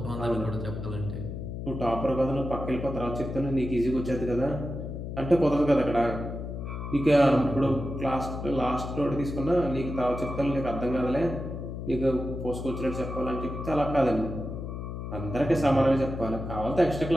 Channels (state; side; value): noise; left; hum, 7 dB below the sound